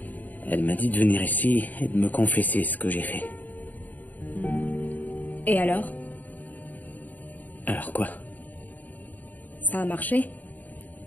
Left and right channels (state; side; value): late; right; 0.082 ms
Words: Elle m'a dit de venir ici et de me confesser ce que j'ai fait. Et alors? Alors quoi? Ça a marché?